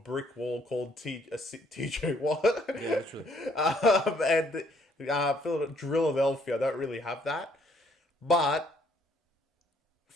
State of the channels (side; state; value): both; normal; correlation 0.66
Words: wall called TJ Watt. Yeah, literally. And Philadelphia don't really have that. But